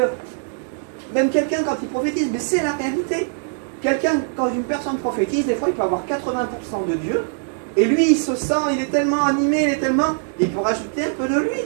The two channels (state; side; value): silent; left; digital silence